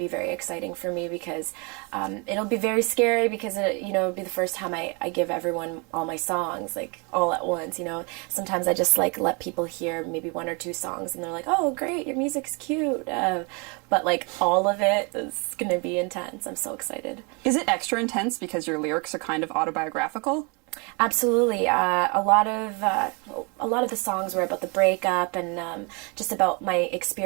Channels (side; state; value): left; quieter; 31.5 dB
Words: very exciting for me, because it'll be very scary, because it'll be the first time I give everyone all my songs, like all at once. Sometimes I just like let people hear maybe one or two songs, and they're like, "Oh, great, your music's cute." But like all of it is going to be intense. I'm so excited. Is it extra intense because your lyrics are kind of autobiographical? Absolutely. A lot of the songs were about the breakup, and just about my